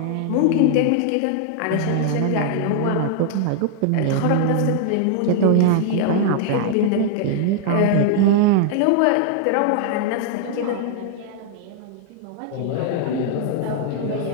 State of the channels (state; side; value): different; both; correlation 0.00